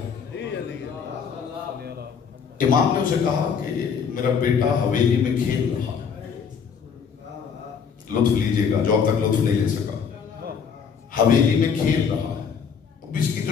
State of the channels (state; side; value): quieter; right; 6.6 dB